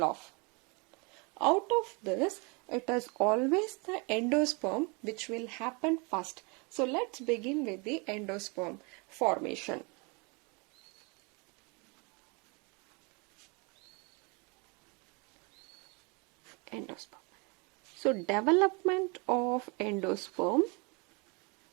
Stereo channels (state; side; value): quieter; left; 30.8 dB